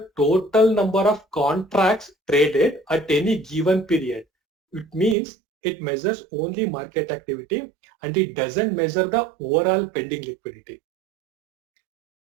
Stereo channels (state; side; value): drops out; left; at 5.2 s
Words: total number of contracts traded at any given period. It means it measures only market activity and it doesn't measure the overall pending liquidity.